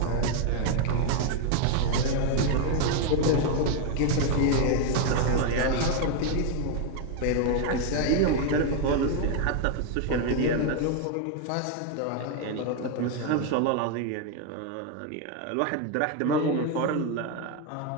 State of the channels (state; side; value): different; both; correlation 0.01